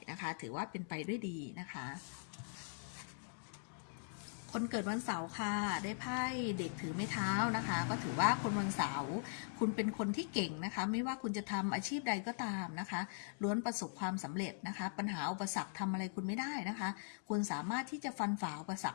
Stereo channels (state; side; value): silent; right; digital silence